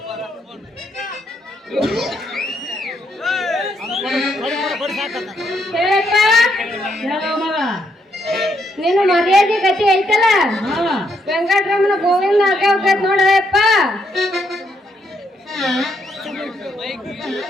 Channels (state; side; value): normal; both; correlation 0.76